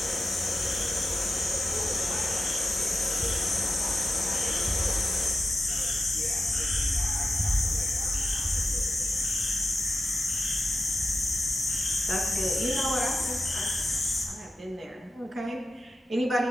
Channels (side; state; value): both; normal; correlation 0.92